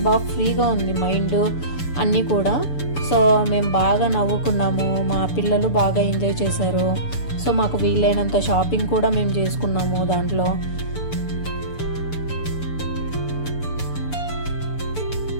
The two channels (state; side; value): late; right; 6.9 ms